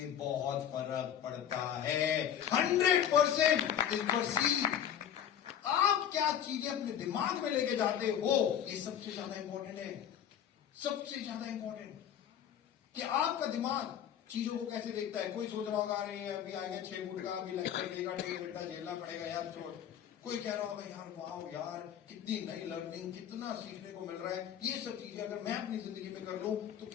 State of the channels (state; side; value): quieter; right; 9.6 dB